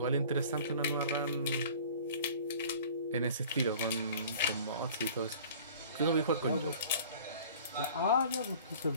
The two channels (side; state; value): both; inverted; correlation -0.46